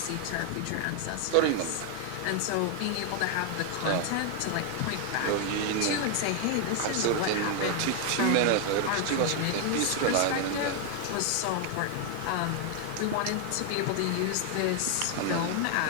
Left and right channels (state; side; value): different; both; correlation 0.00